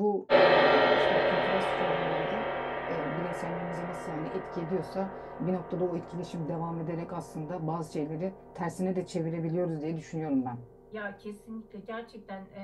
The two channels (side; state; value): both; identical; correlation 1.00